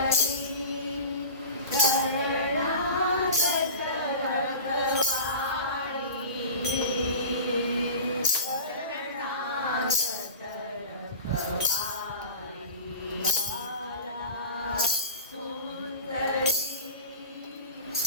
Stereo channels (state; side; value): inverted; both; correlation -0.35